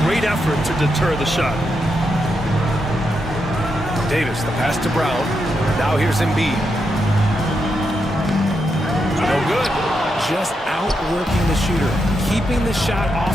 Great effort to deter the shot. Davis, the pass to Brown. Now here's Embiid. No good. Just outworking the shooter, keeping the shot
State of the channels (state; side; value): normal; both; correlation 0.83